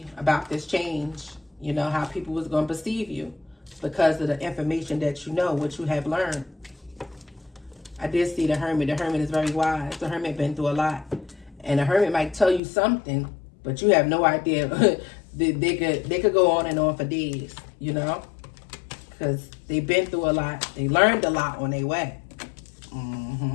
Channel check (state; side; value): drops out; right; at 12.6 s